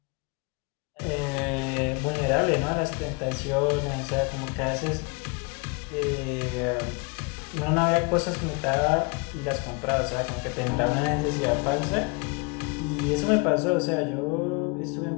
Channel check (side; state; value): right; quieter; 30.5 dB